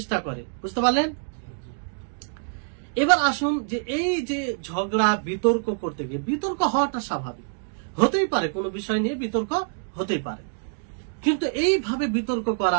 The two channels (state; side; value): silent; left; 61 dB below the other